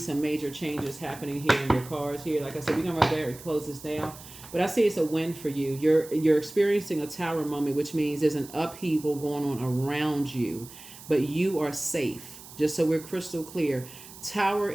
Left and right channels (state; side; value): noise; right; hiss, 17 dB below the sound